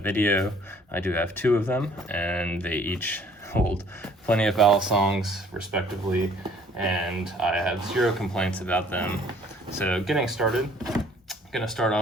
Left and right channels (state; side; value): normal; both; correlation 0.57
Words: I do have two of them, and they each hold plenty of Balasongs respectively, and I have zero complaints about them. So getting started, I'm going to start